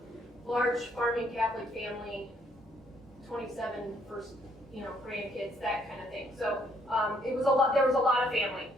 Large farming Catholic family, 27 first, grandkids, that kind of thing. So it was a lot. There was a lot of family.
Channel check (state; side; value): normal; both; correlation 0.68